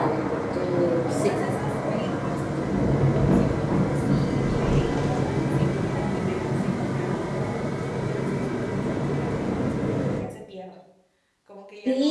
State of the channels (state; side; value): identical; both; correlation 1.00